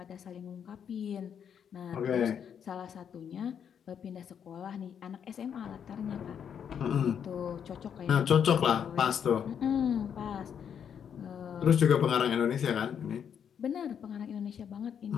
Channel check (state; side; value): quieter; right; 8.1 dB